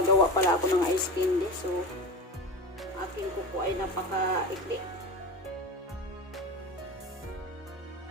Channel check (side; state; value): both; normal; correlation 0.27